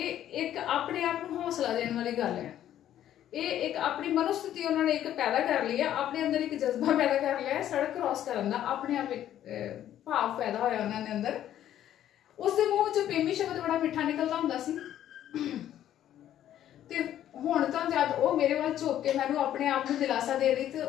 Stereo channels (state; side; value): quieter; right; 11.5 dB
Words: एक अपने आप को हौसला देने वाली गल है। ये एक अपनी मनोस्थिति उन्होंने एक पैदा कर ली है, अपने अंदर एक जज्बा पैदा कर लिया है सड़क क्रॉस करने का, अपने आप एक भाव पैदा होया उन्होंने अंदर। उसके मूँह चो पेमी शब्द बड़ा मिठा निकलता हुंदा सी। ते हुण तां जद वो मेरे वाल झुक के मैनूं अपने आप को दिलासा दे रही, तो